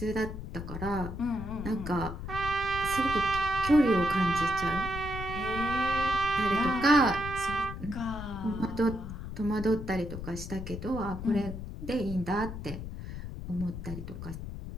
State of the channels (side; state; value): left; noise; rumble, 8 dB below the sound